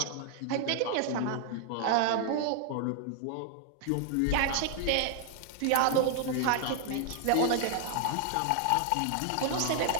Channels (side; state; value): both; different; correlation 0.00